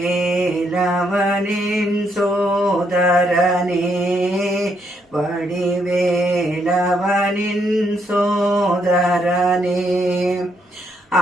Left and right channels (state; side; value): normal; both; correlation 0.75